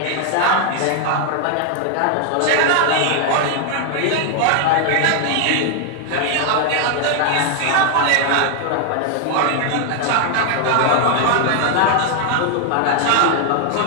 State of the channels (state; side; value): different; both; correlation 0.00